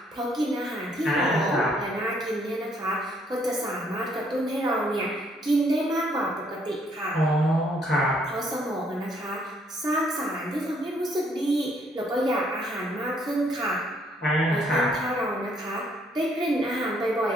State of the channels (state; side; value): normal; both; correlation 0.68